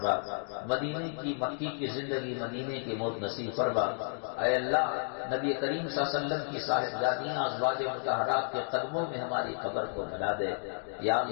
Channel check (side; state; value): right; silent; digital silence